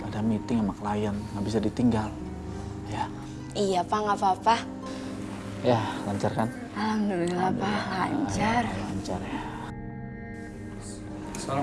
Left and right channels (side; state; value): both; identical; correlation 1.00